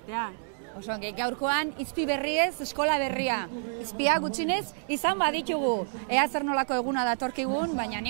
Osongi, gaurkoan izpi berriez, eskola berria. Izpia gutxinez izan baditugu. Ea zer nolako eguna datorkigun, baina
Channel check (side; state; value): left; silent; digital silence